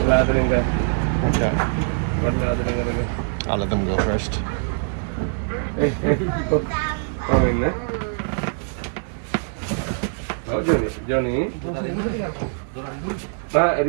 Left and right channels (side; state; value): left; silent; digital silence